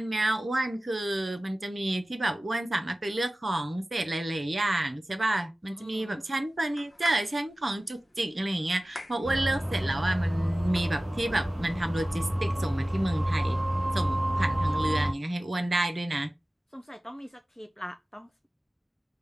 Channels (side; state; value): both; normal; correlation 0.97